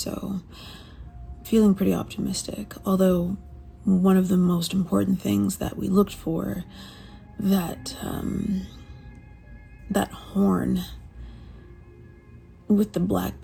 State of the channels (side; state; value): both; identical; correlation 1.00